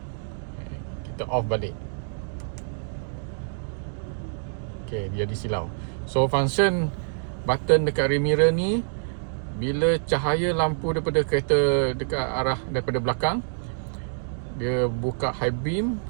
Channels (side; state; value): left; silent; digital silence